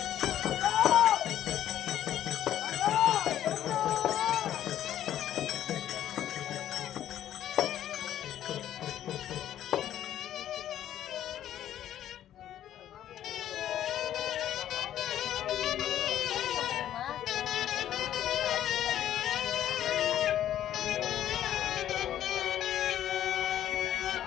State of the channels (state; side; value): quieter; right; 11.5 dB